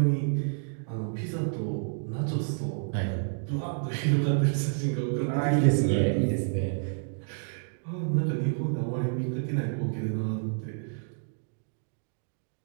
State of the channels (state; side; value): silent; left; digital silence